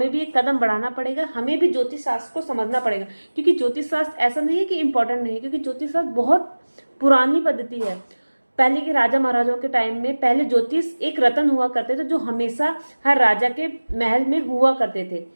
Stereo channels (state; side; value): inverted; both; correlation -1.00